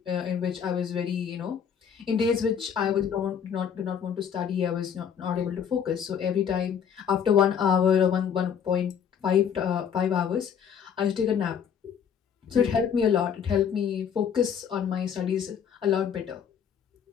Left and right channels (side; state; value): right; quieter; 7.8 dB